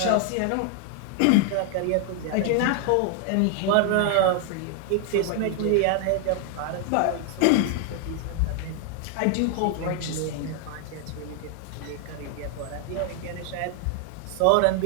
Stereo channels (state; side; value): different; both; correlation 0.00